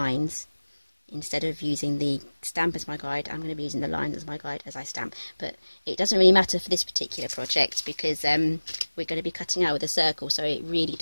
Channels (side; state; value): both; inverted; correlation -1.00